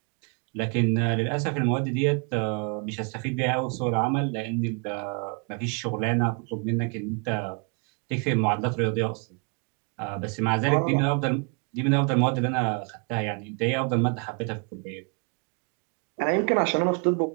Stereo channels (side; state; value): left; quieter; 37.0 dB